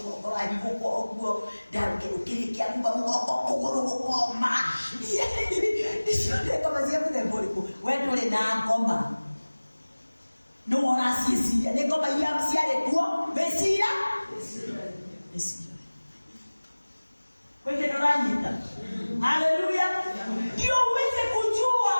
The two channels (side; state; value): both; inverted; correlation -1.00